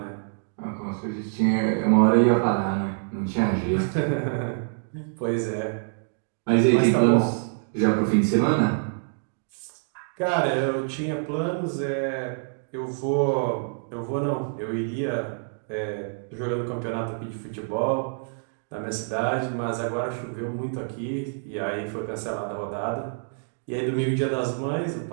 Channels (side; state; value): left; silent; digital silence